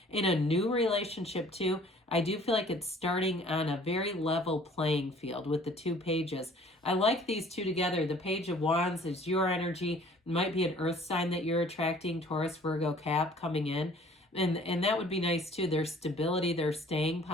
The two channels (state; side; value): normal; both; correlation 0.53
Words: in a new relationship too. I do feel like it's starting on a very level playing field with the 2 pages. I like these 2 together. The Page of Wands is your energy. It might be an earth sign that you're attracting, Taurus, Virgo, Cap coming in. And that would be nice too. Their stability, their staying